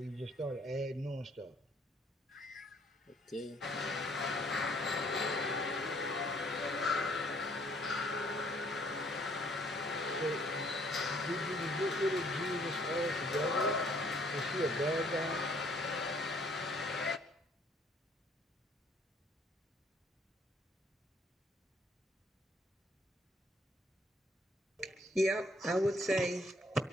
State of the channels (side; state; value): both; normal; correlation 0.63